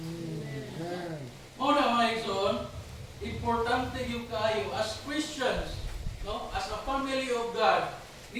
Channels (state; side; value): identical; both; correlation 1.00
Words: Amen. Muna mga igsoon, importante yung kayo as Christians, no? As a family of God,